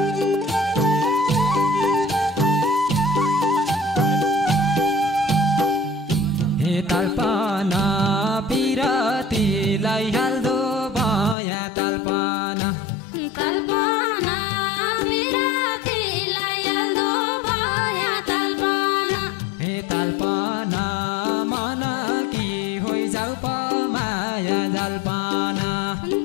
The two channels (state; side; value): drops out; right; at 11.4 s